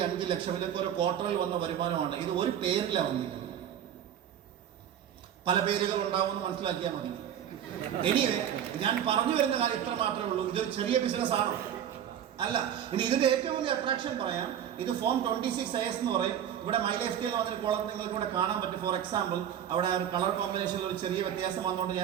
ഇതൊക്കെ ഒരു ക്വാർട്ടറിൽ വന്ന വരുമാനമാണ്. ഇത് ഒരു പേരിലാണ് വന്നിരിക്കുന്നത്. പല പേരുകൾ ഉണ്ടാവുമെന്ന് മനസ്സിലാക്കിയാൽ മതി. എനിവേ, ഞാൻ പറഞ്ഞു വരുന്ന കാര്യം ഇത്ര മാത്രമേ ഉള്ളൂ. ഇതൊരു ചെറിയ ബിസിനസ് ആണോ? അല്ല. ഇനി ഇതിന്റെ ഏറ്റവും വലിയ അട്രാക്ഷൻ പറയാം. ഇത് ഫോം 26IS എന്ന് പറയും. ഇവിടെ മൈ ലൈഫ് സ്റ്റൈൽ വന്നൊരു കോളം നിങ്ങൾക്ക് ഇവിടെ കാണാൻ പറ്റും. ഫോർ എക്സാമ്പിൾ, അവിടെ ഒരു കളർ കോമ്പിനേഷനിൽ ഒരു ചെറിയ വ്യത്യാസം വന്നുകൊണ്ട്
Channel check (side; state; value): left; quieter; 9.7 dB